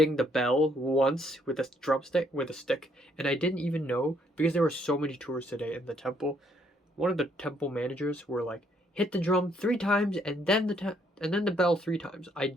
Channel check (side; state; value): both; normal; correlation 0.69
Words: the bell once with a stick, and I didn't even know, because there were so many tourists today in the temple. One of the temple managers were like, hit the drum 3 times and then the bell 3 times. I